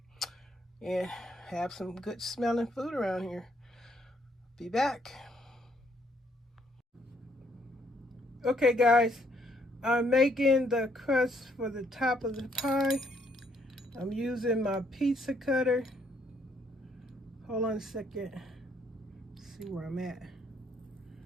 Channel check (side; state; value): both; normal; correlation 0.69